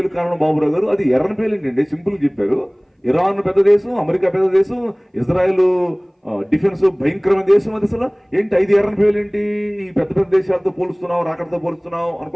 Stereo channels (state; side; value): identical; both; correlation 1.00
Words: కారణం బాబురావు గారు? అది ఎర్రని పేలు ఏంటండి, సింపుల్ చెప్పారు. ఇరాన్ పెద్ద దేశం, అమెరికా పెద్ద దేశం, ఇజ్రాయెల్ డిఫెన్స్ భయంకరమైన దేశం. అది అసలు ఏంటి 5 ఎర్రని పేలు ఏంటి? ఈ పెద్ద పెద్ద దేశాలతో పోలుస్తున్నావు, రాకడతో పోలుస్తున్నావు